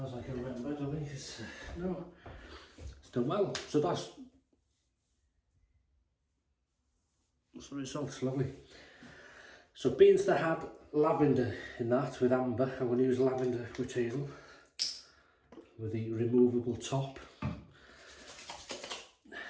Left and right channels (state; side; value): identical; both; correlation 1.00